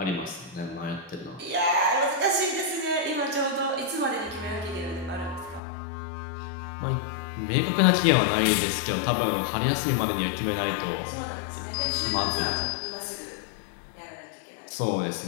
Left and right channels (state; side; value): drops out; right; at 5.6 s